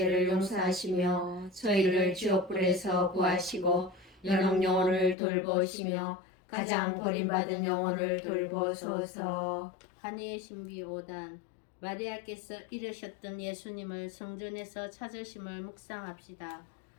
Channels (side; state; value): right; drops out; at 5.2 s